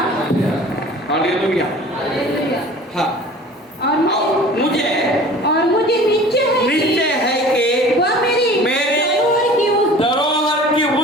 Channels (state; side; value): normal; both; correlation 0.44